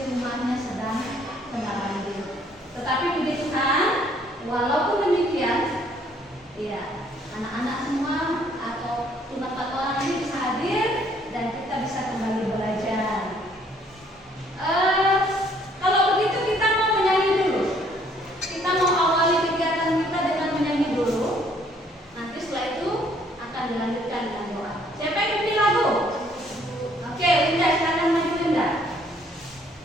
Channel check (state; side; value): normal; both; correlation 0.63